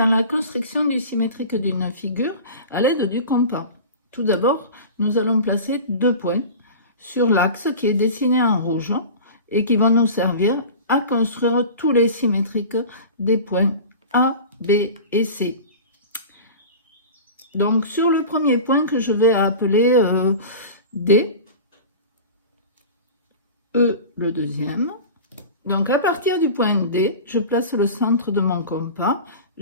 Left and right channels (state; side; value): inverted; both; correlation -0.34